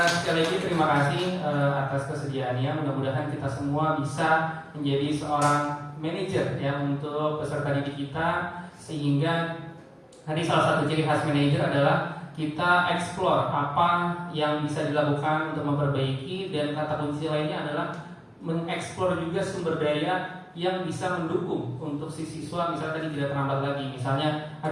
Sekali lagi terima kasih atas kesediaannya. Mudah-mudahan kita semua bisa menjadi seorang manajer ya untuk peserta didik kita, sehingga tadi salah satu ciri khas manajer adalah kita explore apa yang bisa dilakukan untuk memperbaiki, dan kata kunci lainnya adalah mengeksplor juga sumber daya yang bisa mendukung untuk si siswa, misalnya tadi tidak terlambat lagi, misalnya ada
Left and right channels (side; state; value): both; identical; correlation 1.00